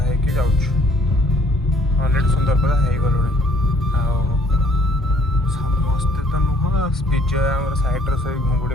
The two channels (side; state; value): both; normal; correlation 0.60